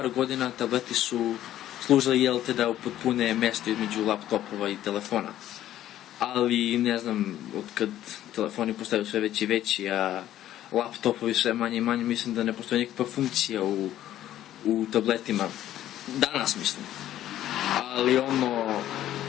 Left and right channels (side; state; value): right; quieter; 12.6 dB